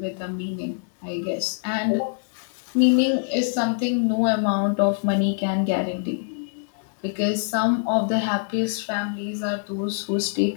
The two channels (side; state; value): right; silent; digital silence